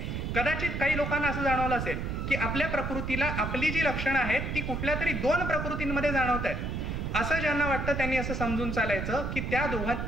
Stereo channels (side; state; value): right; noise; rumble, 3 dB below the sound